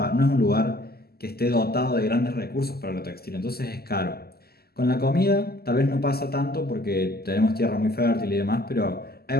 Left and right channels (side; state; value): right; late; 0.46 ms